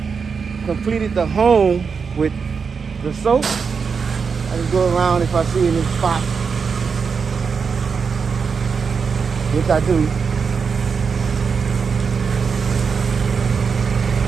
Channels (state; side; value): quieter; left; 5.7 dB